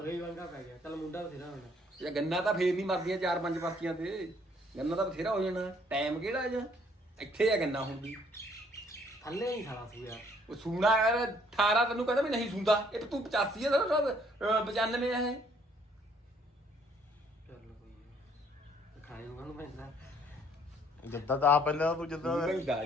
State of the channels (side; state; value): both; normal; correlation 0.63